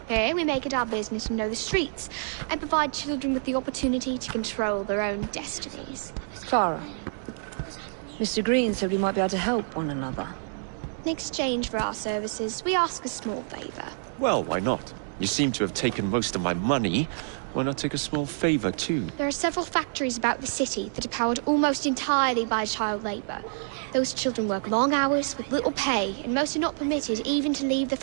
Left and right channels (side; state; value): left; silent; digital silence